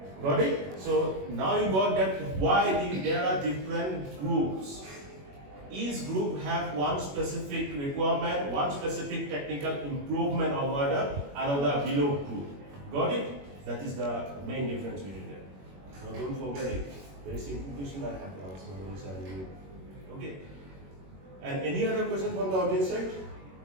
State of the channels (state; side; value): late; left; 21 ms